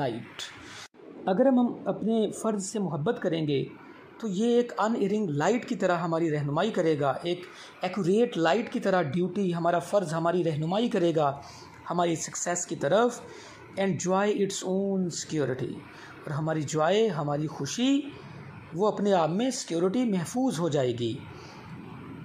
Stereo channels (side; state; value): both; identical; correlation 1.00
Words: अगर हम अपने फ़र्ज़ से मोहब्बत करेंगे तो ये एक अनइरिंग लाइट की तरह हमारी रहनुमाई करेगा, एक एक्यूरेट लाइट की तरह ड्यूटी, हमारा फ़र्ज़ हमारी रहनुमाई करेगा हमारी सक्सेस की तरफ। And Joy its own security, और हमारी जॉय, हमारी खुशी, वो अपने आप में सिक्योरिटी महफूज हो जाएगी।